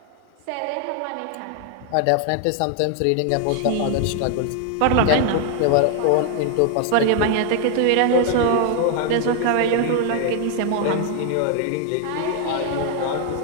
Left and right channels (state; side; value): different; both; correlation 0.00